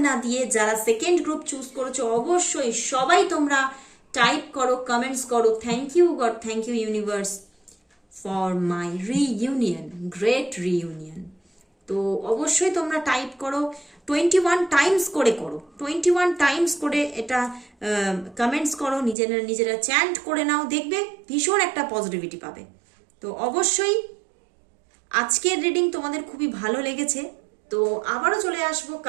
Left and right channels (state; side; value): drops out; left; at 19.2 s